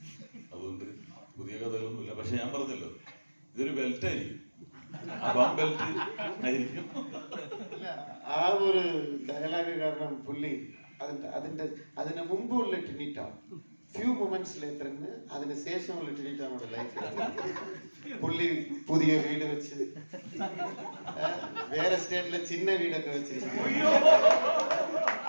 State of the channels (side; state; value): both; inverted; correlation -1.00